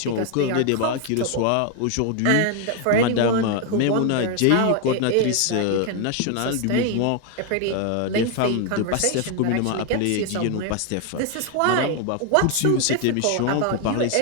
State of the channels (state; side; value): different; both; correlation 0.01